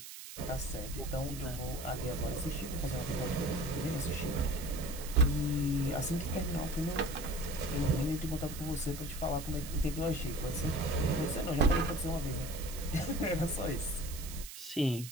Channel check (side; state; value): right; noise; hiss, 12 dB below the sound